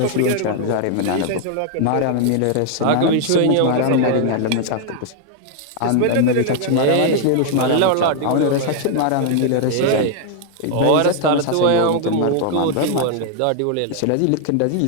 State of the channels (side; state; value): both; different; correlation 0.00